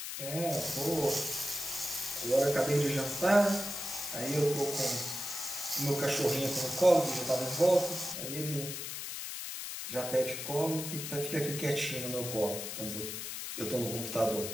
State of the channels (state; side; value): noise; left; hiss, 6 dB below the sound